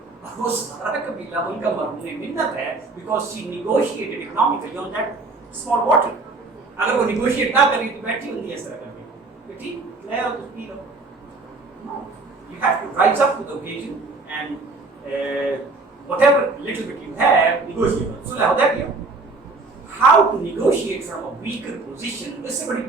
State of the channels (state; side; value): quieter; left; 3.6 dB